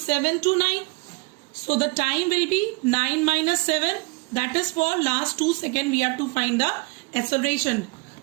to 9. So the time will be 9 minus 7. That is for last 2 seconds we have to find the acceleration.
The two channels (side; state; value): left; quieter; 28.2 dB